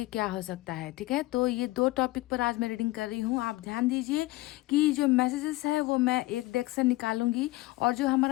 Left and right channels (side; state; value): right; quieter; 19.7 dB